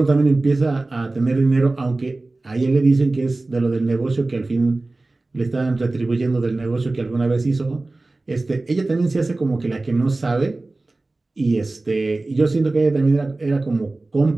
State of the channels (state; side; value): quieter; left; 3.1 dB